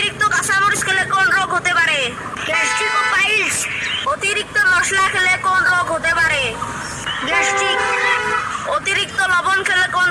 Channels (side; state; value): both; identical; correlation 1.00